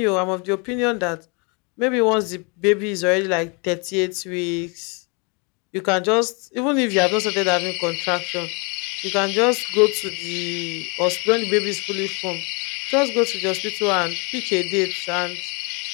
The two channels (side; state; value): right; quieter; 32.5 dB